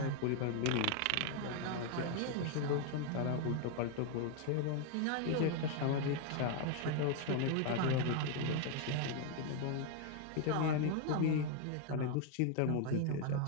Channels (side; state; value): both; different; correlation 0.01